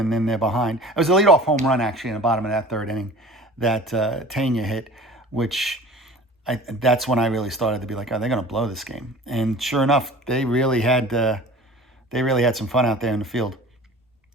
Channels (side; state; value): both; normal; correlation 0.42